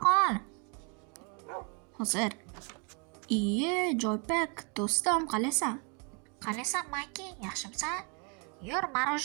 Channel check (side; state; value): left; quieter; 34.6 dB